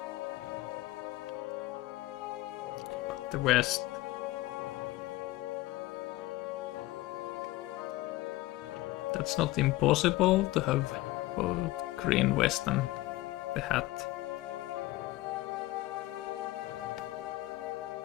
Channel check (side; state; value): right; quieter; 17.9 dB